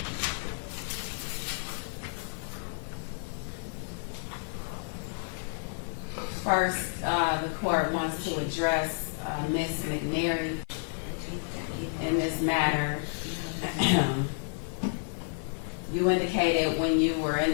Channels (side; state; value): right; silent; digital silence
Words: First, the court wants to address Ms. McNary in this matter. You indicated when you were in